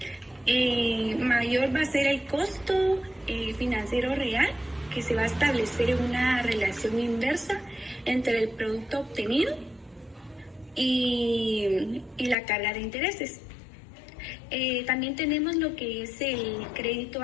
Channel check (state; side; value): drops out; right; at 12.4 s